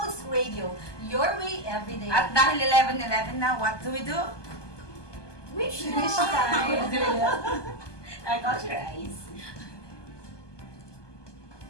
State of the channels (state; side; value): late; right; 1.2 ms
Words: Radio, your way every day. At dahil 11:11 na, what do we do? Wish time. I got your eyes.